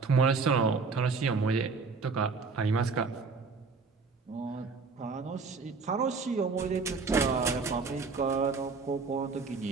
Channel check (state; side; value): quieter; left; 4.6 dB